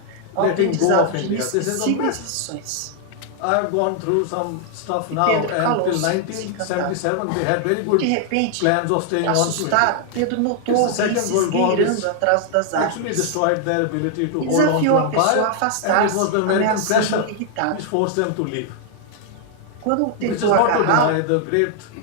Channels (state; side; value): different; both; correlation 0.00